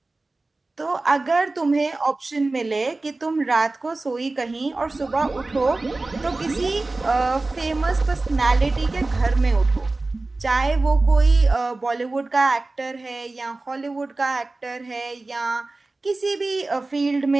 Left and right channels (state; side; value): quieter; left; 3.2 dB